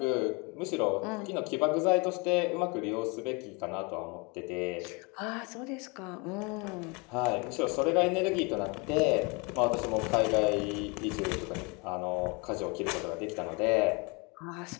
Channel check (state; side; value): quieter; right; 29.5 dB